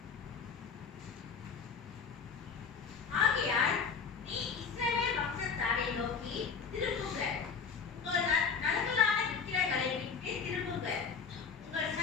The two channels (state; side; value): quieter; right; 5.9 dB